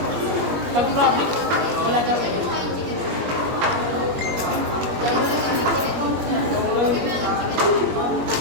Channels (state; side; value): late; left; 21 ms